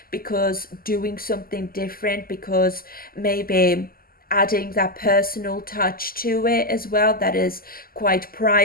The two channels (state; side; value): late; right; 0.42 ms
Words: because doing something different, because maybe adding that personal touch to it as well, that is quite